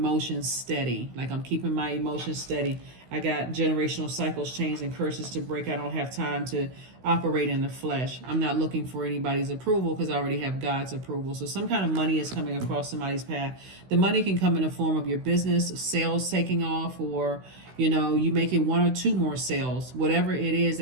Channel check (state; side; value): late; left; 16 ms